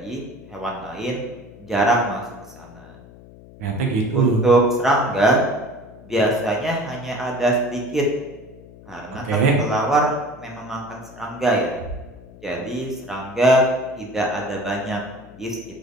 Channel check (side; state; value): left; noise; hum, 20 dB below the sound